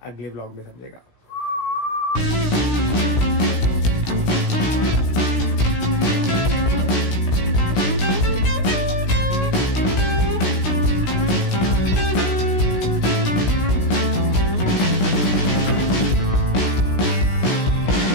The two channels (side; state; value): right; late; 16 ms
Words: अगले व्लॉग में समझेगा.